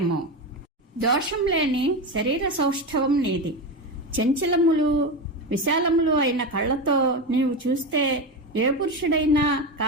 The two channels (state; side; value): normal; both; correlation 0.18